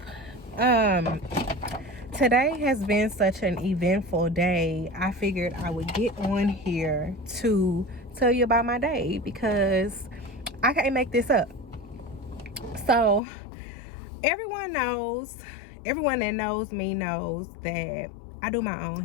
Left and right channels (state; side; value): drops out; right; at 13.2 s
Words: Today has been such an eventful day. I figured I would get on here to tell you about my day because I can't make this up. So everyone that knows me knows that I do my own